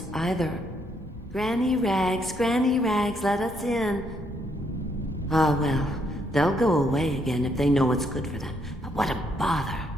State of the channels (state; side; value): normal; both; correlation 0.73